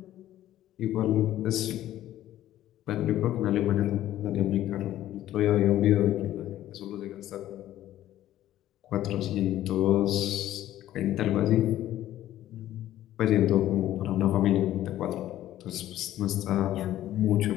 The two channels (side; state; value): right; quieter; 13.3 dB